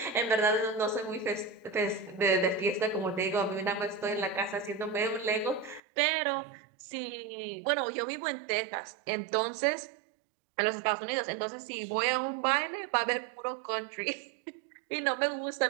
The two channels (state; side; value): drops out; left; at 5.8 s